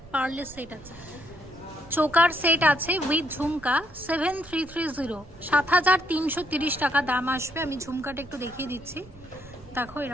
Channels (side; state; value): right; noise; rumble, 21 dB below the sound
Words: পার্লের সেট আছে, চোকার সেট আছে উইথ ঝুমকা 7330 7330 টাকা দাম আসবে। আমি ঝুমকাটা একটু দেখিয়ে দিচ্ছি, দেখো